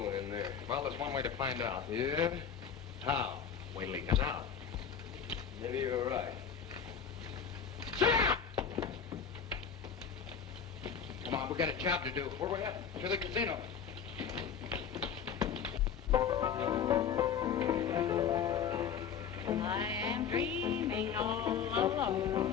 in there. Well, there's one way to find out. Yeah? How? Wait till he comes out. Maybe you're right. Sit down! Come on, we got a job to do. Where we at? To the casino. I am dreaming all alone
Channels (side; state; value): right; quieter; 7.3 dB